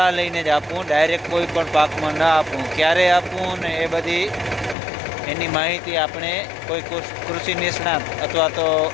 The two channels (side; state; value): right; drops out; at 4.8 s